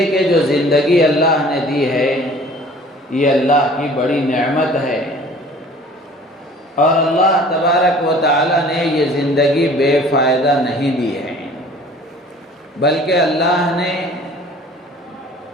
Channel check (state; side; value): normal; both; correlation 0.49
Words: کہ جو زندگی اللہ نے دی ہے یہ اللہ کی بڑی نعمت ہے، اور اللہ تبارک و تعالی نے یہ زندگی بے فائدہ نہیں دی ہے، بلکہ اللہ نے